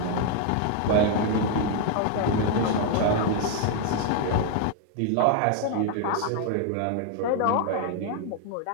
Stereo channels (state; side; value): different; both; correlation 0.00